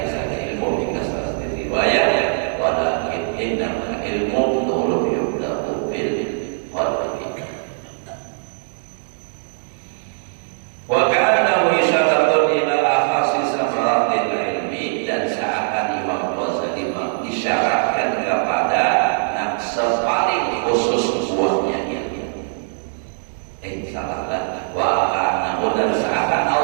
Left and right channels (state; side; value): silent; left; digital silence